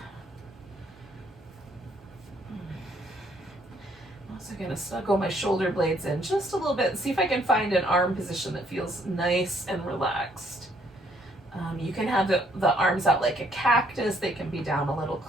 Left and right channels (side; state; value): both; normal; correlation 0.67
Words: I'm also going to snuggle my shoulder blades in just a little bit and see if I can find an arm position that feels nice and relaxed. You can have the arms out like a cactus. They can be down a little